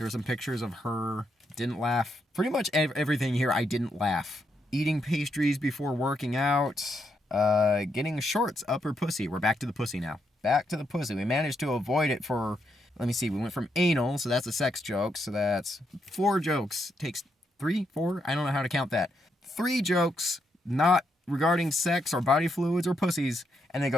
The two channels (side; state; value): both; normal; correlation 0.79